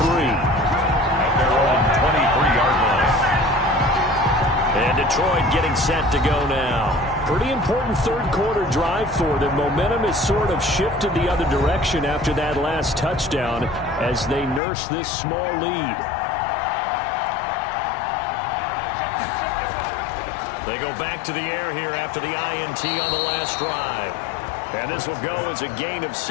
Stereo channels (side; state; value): right; drops out; at 14.6 s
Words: their own 23-yard line. And Detroit getting set to go now. Pretty important 3rd quarter drive for them. Momentum has sort of shifted the other direction after that last touchdown as they nurse this small lead. They go back to the air here after the INT on the last drive. And this will go as a gain of